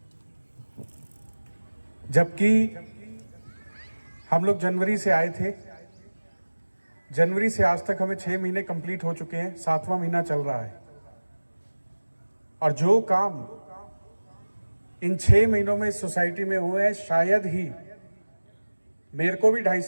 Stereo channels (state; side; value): inverted; both; correlation -1.00